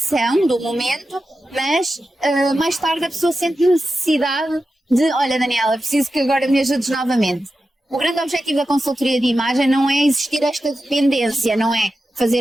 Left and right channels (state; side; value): normal; both; correlation 0.91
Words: do momento, mas mais tarde a pessoa sente necessidade de, olha Daniela, preciso que agora me ajudes novamente. O grande objetivo da consultoria de imagem não é existir esta dependência, não é